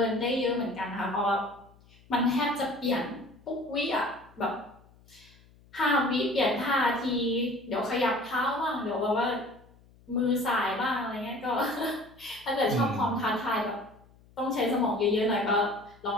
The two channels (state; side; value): noise; left; hum, 27 dB below the sound